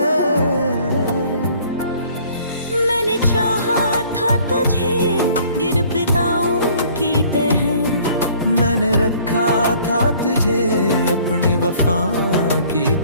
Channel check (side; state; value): both; inverted; correlation -0.56